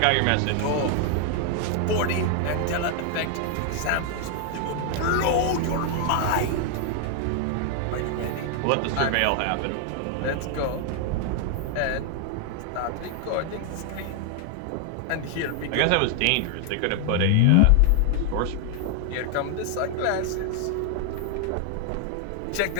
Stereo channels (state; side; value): different; both; correlation 0.00